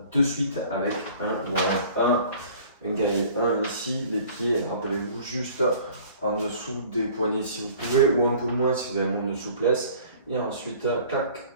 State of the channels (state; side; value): inverted; both; correlation -0.49